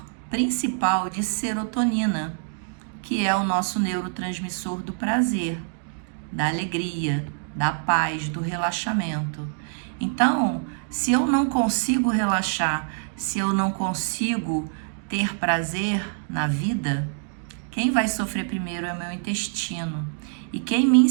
principal de serotonina, que é o nosso neurotransmissor do prazer, da alegria, da paz, do relaxamento. Então, se eu não consigo relaxar, se eu não consigo ter prazer na vida, quem vai sofrer primeiro é o meu intestino. E quem me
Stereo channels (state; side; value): silent; left; digital silence